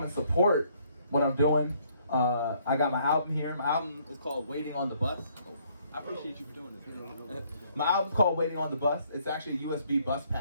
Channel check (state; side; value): inverted; both; correlation -0.66